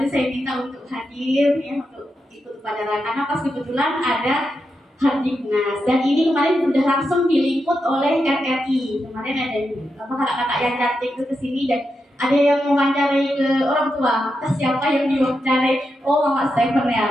saya minta untuk hadir ya untuk ikut upacara karena pas kebetulan ada Hardiknas dan ini kemarin sudah langsung diliput oleh RRI. Kemarin ada kakak-kakak yang cantik itu kesini dan ada yang mewawancarai ke orang tua. Entah siapa yang diwawancarai? Oh, Mak Stephen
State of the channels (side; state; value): both; normal; correlation 0.86